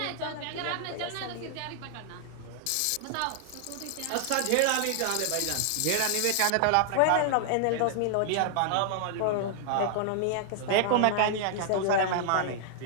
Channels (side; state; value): both; different; correlation -0.01